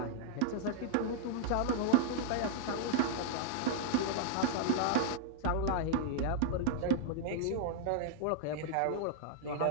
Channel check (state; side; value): different; both; correlation -0.01